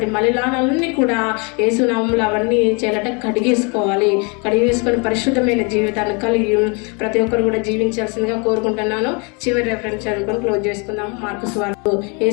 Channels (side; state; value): right; quieter; 32.6 dB